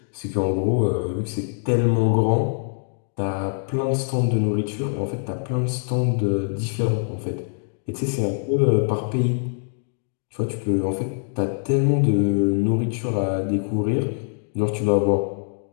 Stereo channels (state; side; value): silent; right; digital silence